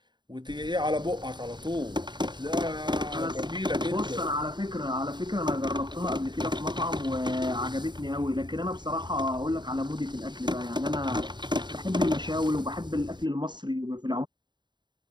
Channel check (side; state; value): left; late; 0.22 ms